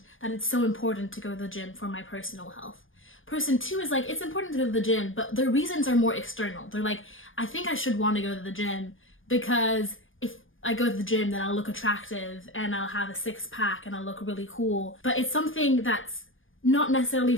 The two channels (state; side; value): late; right; 0.58 ms